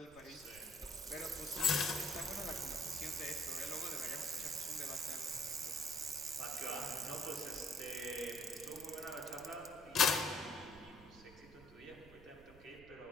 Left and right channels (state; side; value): noise; right; rumble, 20 dB below the sound